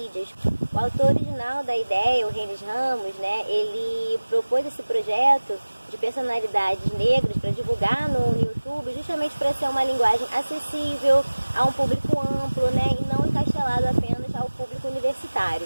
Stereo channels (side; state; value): both; inverted; correlation -1.00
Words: O autor original da ideia, o Renis Ramos, ele propôs esse projeto de personalidades negras para divulgar no YouTube, justamente para ser uma linguagem acessível a um público amplo, e não encastelado apenas ao público universitário.